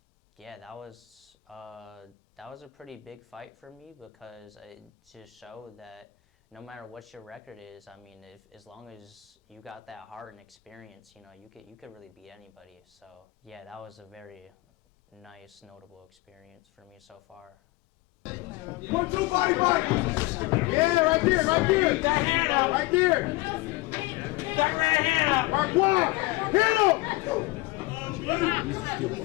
yeah, that was a pretty big fight for me, because it just showed that no matter what your record is, I mean, as long as you got that heart and experience, you know, you could really beat anybody. So yeah, that was a very nice, notable experience for me so far. 1, 2, body fight. Yeah, right there, right there. That hand up. Right there. That right hand up. Mark 1. Hit him.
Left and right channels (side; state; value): right; quieter; 20.4 dB